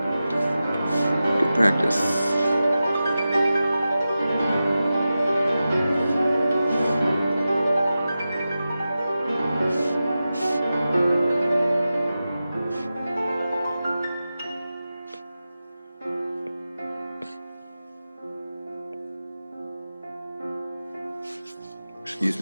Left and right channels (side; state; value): both; inverted; correlation -0.93